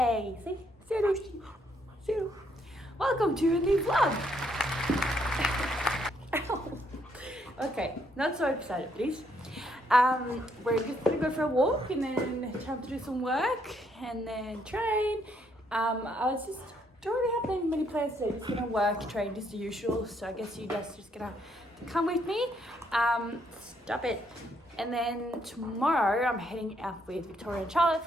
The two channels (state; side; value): normal; both; correlation 0.72